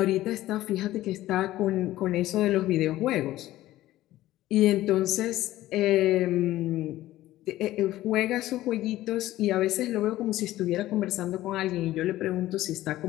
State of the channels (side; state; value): right; quieter; 15.4 dB